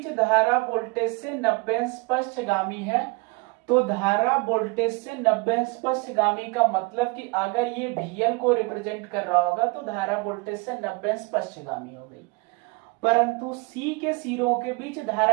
धारा वोल्टेज से 90 अंश पश्चगामी है। तो धारा वोल्टेज से 90 अंश पश्चगामी का मतलब कि अगर ये VL को रिप्रेजेंट कर रहा होगा तो धारा वोल्टेज से 90 अंश पश्चगामी हो गई। परंतु सी के सिरों के बीच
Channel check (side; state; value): left; quieter; 26.9 dB